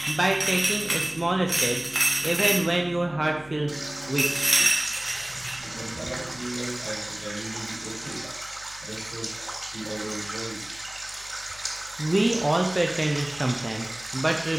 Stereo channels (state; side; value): noise; left; hum, 22 dB below the sound